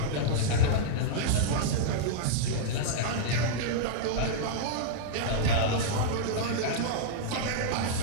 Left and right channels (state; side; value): different; both; correlation -0.02